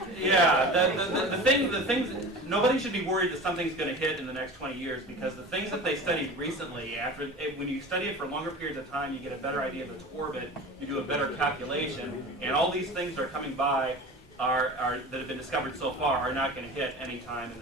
yeah, the things, nobody should be worried that something's going to hit in the next 20 years, because the things that they studied recently, when you study it for longer periods of time, you get a better idea of its orbit, you do a better calculation, and all these things that are coming by that have been discovered so far are not going to hit any time in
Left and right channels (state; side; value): normal; both; correlation 0.35